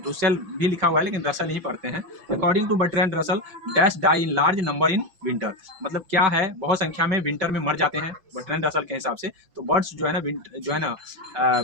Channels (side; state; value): left; late; 5.8 ms